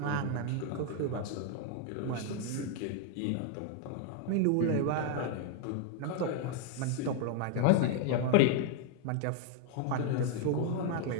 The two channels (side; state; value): both; different; correlation 0.00